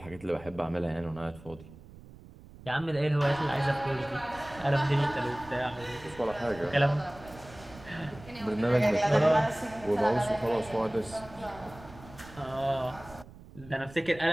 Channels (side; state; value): right; noise; rumble, 19 dB below the sound